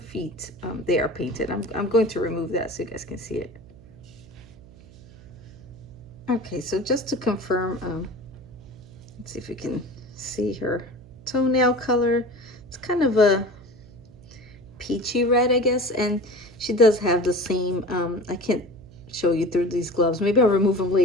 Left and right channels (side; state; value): right; noise; hum, 21 dB below the sound